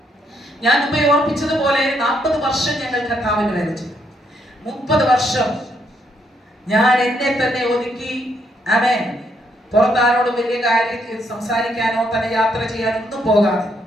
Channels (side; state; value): both; normal; correlation 0.74